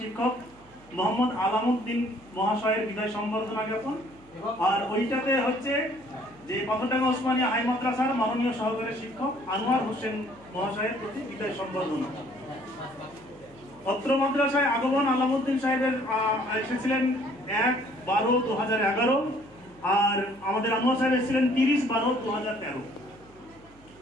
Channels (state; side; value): noise; right; hum, 26 dB below the sound